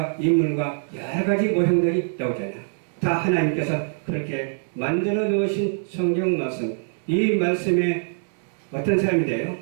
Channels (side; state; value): left; silent; 63 dB below the other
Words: 인물과 여러 가지 모형들이 나오잖아요. 다 하나님께서 그렇게 만들어 놓으신 성경 말씀, 이 말씀에 어떤 사람이 돼요?